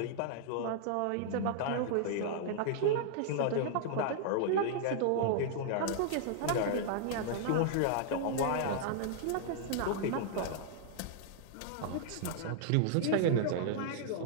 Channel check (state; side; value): different; both; correlation -0.01